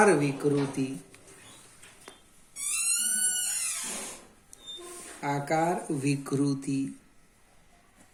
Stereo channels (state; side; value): identical; both; correlation 1.00